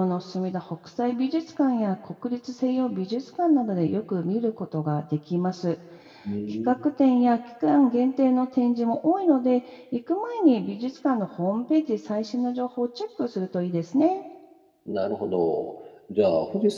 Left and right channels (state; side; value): identical; both; correlation 1.00